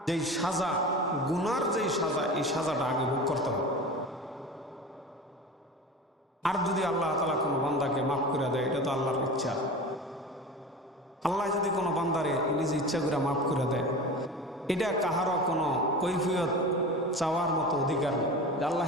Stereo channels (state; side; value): normal; both; correlation 0.32